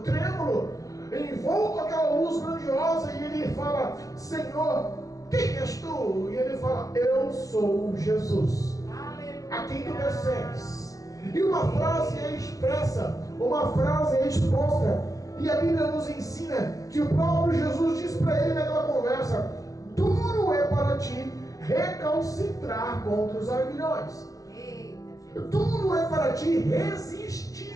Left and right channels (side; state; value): right; late; 0.17 ms